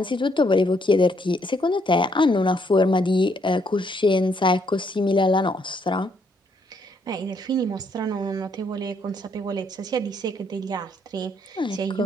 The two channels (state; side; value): normal; both; correlation 0.71